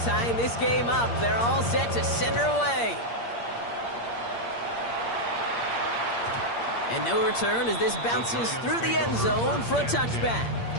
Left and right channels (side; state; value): right; late; 8.6 ms